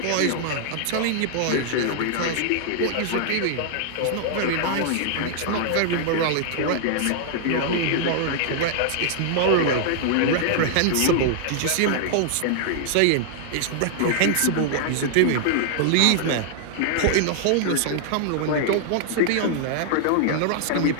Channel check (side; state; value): both; different; correlation -0.01